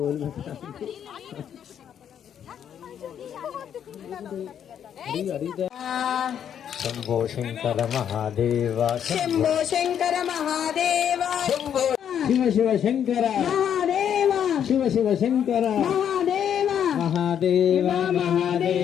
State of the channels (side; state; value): right; quieter; 9.0 dB